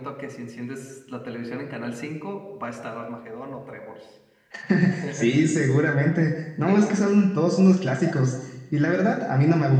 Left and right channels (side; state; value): both; identical; correlation 1.00